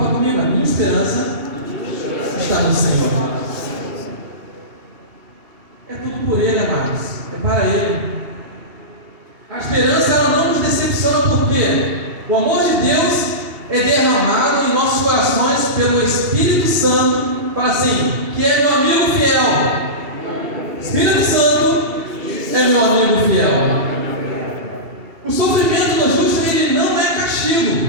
comigo, a minha esperança está no Senhor. É tudo por Ele, amados. É para Ele. A esperança, ela não nos decepciona, porque o amor de Deus é derramado em nossos corações pelo Espírito Santo. Fala assim, que é meu amigo fiel. Espírito Santo é meu amigo fiel. O sofrimento do justo, ele não é castigo,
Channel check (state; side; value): late; left; 2.8 ms